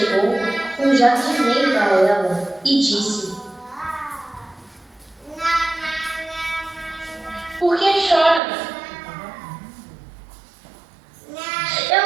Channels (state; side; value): drops out; left; at 8.4 s